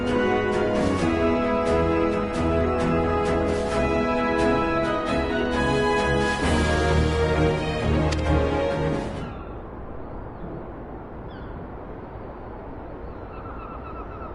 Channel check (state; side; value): identical; both; correlation 1.00